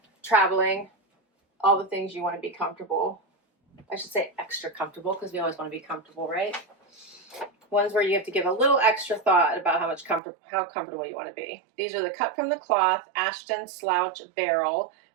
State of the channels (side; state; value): left; drops out; at 10.2 s